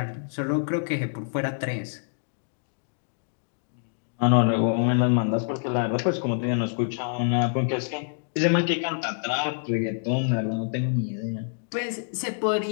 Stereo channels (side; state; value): right; silent; digital silence